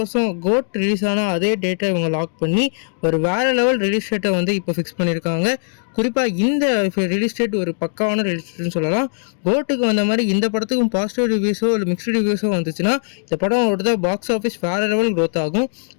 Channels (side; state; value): right; silent; digital silence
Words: கோட் ரிலீஸ் ஆன அதே டேட்டை இவங்க லாக் பண்ணி ஒரு வேற லெவல் ரிலீஸ் டேட்டை வந்து இப்போ ஃபிக்ஸ் பண்ணியிருக்காங்க. குறிப்பாக இந்த ரிலீஸ் டேட் ஒரு பக்காவான ரிலீஸ் டேட்னு சொல்லலாம். கோட்டுக்கு வந்த மாதிரி இந்த படத்துக்கும் பாசிட்டிவ் ரிவ்யூஸோ இல்லை மிக்ஸ்டு ரிவ்யூஸோ வந்துச்சுன்னா இந்த படம் ஒரு பாக்ஸ் ஆஃபீஸ் வேற லெவல் க்ரோத் ஆகும்.